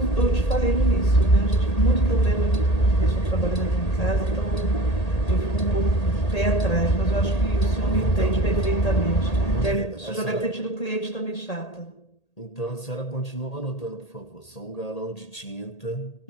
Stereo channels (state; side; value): late; right; 1.8 ms